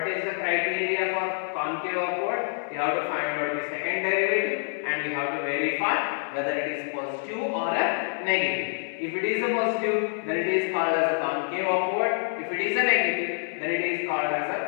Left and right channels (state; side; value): silent; right; 60 dB below the other